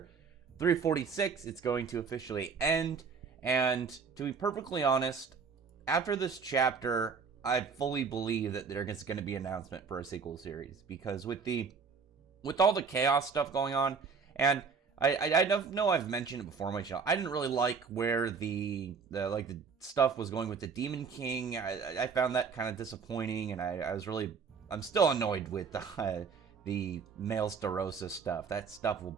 346, it's going to officially end. And to be perfectly honest, after this chapter, I fully believe that there's going to be an announcement for a sequel series, because with all the chaos stuff going on, and I know I've mentioned it before on my channel. I didn't really like where the stuff was going with the Demon King. I found that kind of disappointing, and I'm still annoyed with the male Starosa stuff. That's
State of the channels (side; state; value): left; quieter; 5.5 dB